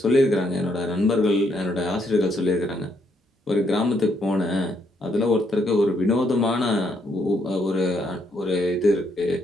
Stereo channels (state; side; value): normal; both; correlation 0.73